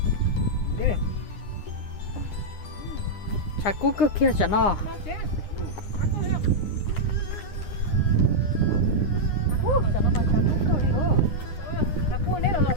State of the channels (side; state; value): right; late; 9.8 ms